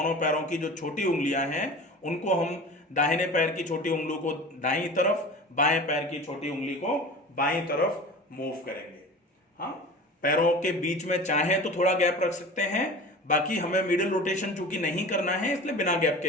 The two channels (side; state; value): both; normal; correlation 0.36